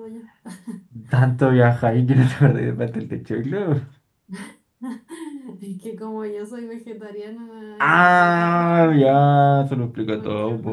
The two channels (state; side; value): identical; both; correlation 1.00